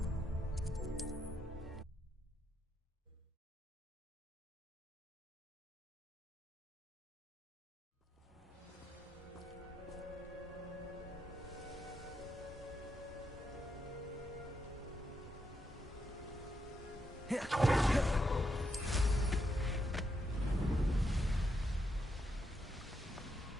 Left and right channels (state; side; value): normal; both; correlation 0.82